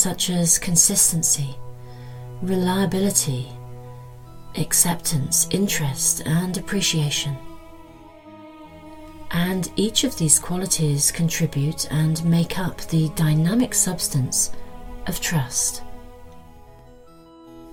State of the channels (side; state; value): both; identical; correlation 1.00